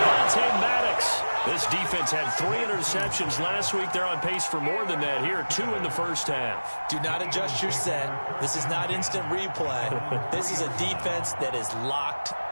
Maddox. This defense had 3 interceptions last week. They're on pace for more than that here. 2 in the first half. Do not adjust your set. This is not instant replay. This is a defense that is locked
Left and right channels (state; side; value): inverted; both; correlation -1.00